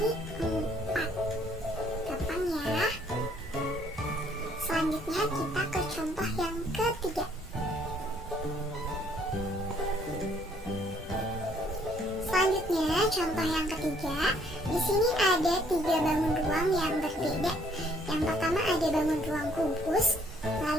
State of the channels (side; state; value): both; normal; correlation 0.64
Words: 4. Gampang ya. Selanjutnya kita ke contoh yang ketiga. Selanjutnya contoh yang ketiga. Di sini ada 3 bangun ruang yang berbeda. Yang pertama ada bangun ruang kubus,